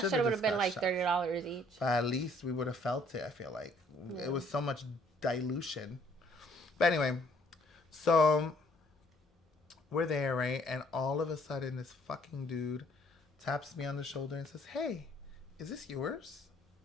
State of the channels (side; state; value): both; normal; correlation 0.62